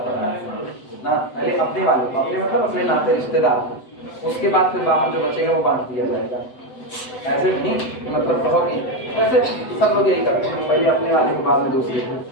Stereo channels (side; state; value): right; late; 7.9 ms